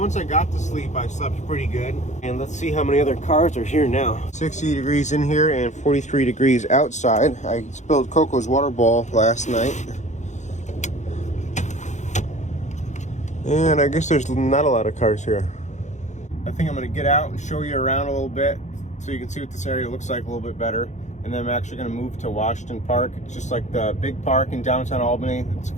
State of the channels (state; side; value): late; right; 0.34 ms